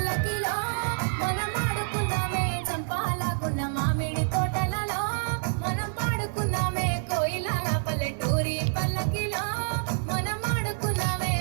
మనం ఆడుకున్నామే చంపాలాగున్న మామిడి తోటలలో మనం పాడుకున్నామే కోయిలాల పల్లెటూరి పల్లకిలో మనం ఆడుకున్నామే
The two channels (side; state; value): left; silent; digital silence